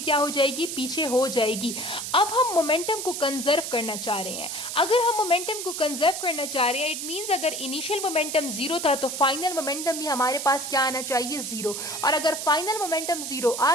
क्या हो जाएगी, पीछे हो जाएगी। अब हम मोमेंटम को कंजर्व करना चाह रहे हैं। अगर हम मोमेंटम को कंजर्व करना चाह रहे हैं, इट मींस अगर इनिशियल मोमेंटम जीरो था तो फाइनल मोमेंटम भी हमारे पास क्या आना चाहिए, जीरो। और अगर फाइनल मोमेंटम जीरो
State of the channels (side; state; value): right; noise; hiss, 5 dB below the sound